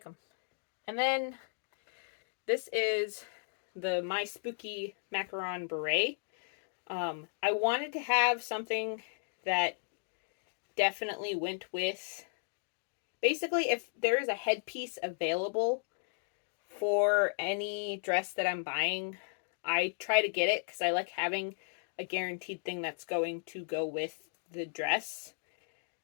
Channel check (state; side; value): silent; right; digital silence